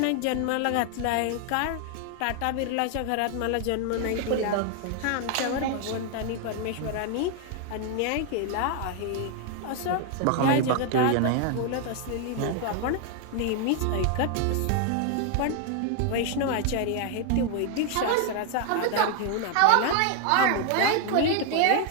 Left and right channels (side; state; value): both; different; correlation 0.00